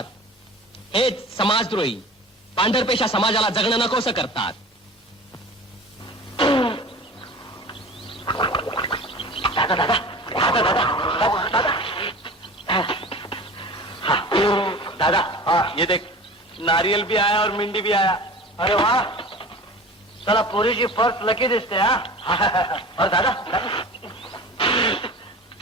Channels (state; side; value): normal; both; correlation 0.38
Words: हेच समाजद्रोही पांढरपेशा समाजाला जगणं नकोसं करतात. दादा हाँ ये देख नारियल भी आया और मिंडी भी आया. अरे वाह चला पोरीची पर्स लकी दिसते हा. और दादा